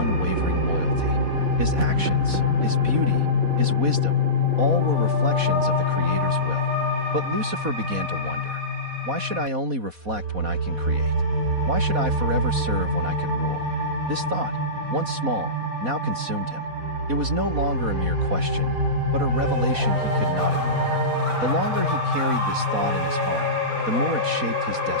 loyalty. His actions, his beauty, his wisdom, all were reflections of the Creator's will. But Lucifer began to wonder, why should I only reflect when I can create? Why should I forever serve when I could rule? This thought, once small, now consumed him. It was no longer a mere question, but a revelation he could not ignore. The longer he carried this thought in his heart, the more it shaped his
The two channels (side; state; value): left; late; 4.1 ms